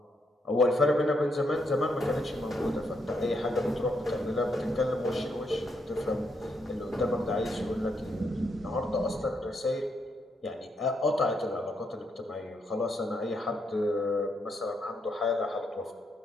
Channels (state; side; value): normal; both; correlation 0.78